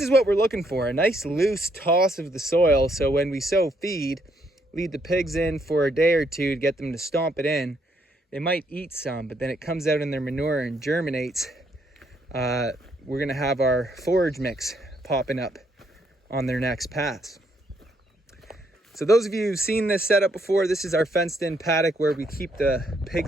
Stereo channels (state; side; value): normal; both; correlation 0.73